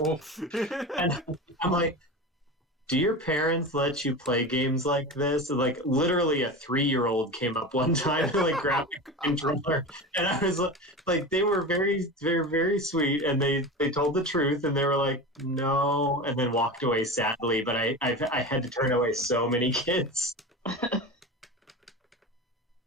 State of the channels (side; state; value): both; normal; correlation 0.27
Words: no. And I'm like, do your parents let you play games like this? And, literally a 3-year-old came up one time and grabbed a controller, and I was they were very, very, very sweet, and they told the truth, and they were like, no, and then walked away sadly. But I had to turn away so many kids.